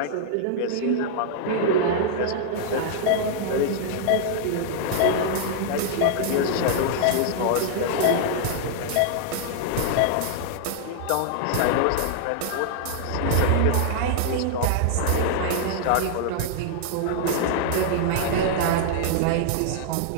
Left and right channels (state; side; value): different; both; correlation -0.01